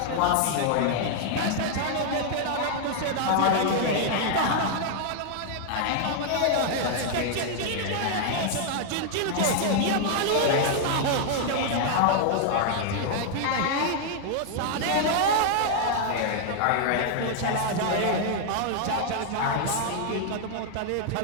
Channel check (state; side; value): different; both; correlation 0.00